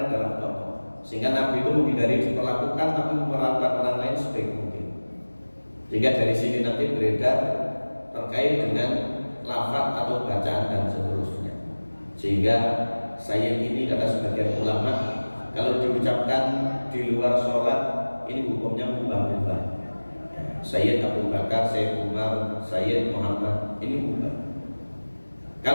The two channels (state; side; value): inverted; both; correlation -1.00